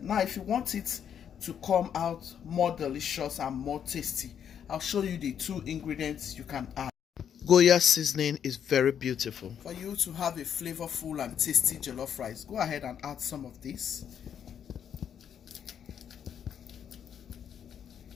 now if you want it to come out more delicious and more tasty, I'll show you the 2 ingredients you can add. Goya seasoning is very beautiful. For you to have a flavorful and tasty jollof rice, go ahead and add some of this.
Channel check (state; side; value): quieter; right; 8.5 dB